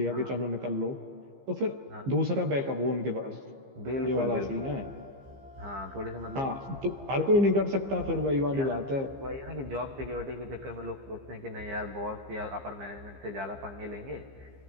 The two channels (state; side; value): late; left; 15 ms